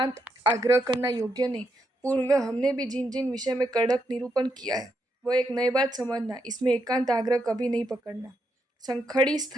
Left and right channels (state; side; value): normal; both; correlation 0.81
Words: आग्रह करना योग्य नहीं। पूर्व हमने भी जिन जिन विषय में कड़क निरूपण किया है वह एक नई बात समझना, इसमें एकांत आग्रह कभी नहीं पकड़ना। संखड़ी